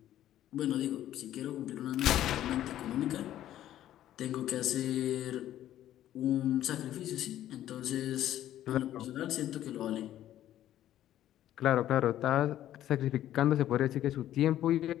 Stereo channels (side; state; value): right; quieter; 12.5 dB